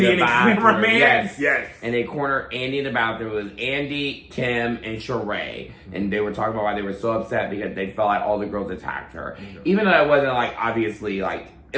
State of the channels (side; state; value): both; identical; correlation 1.00